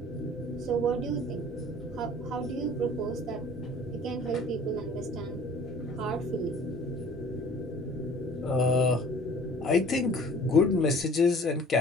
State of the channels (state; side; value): normal; both; correlation 0.49